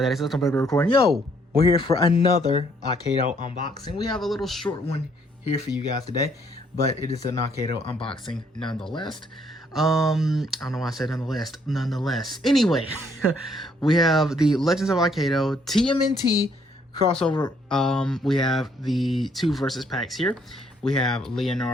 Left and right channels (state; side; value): normal; both; correlation 0.68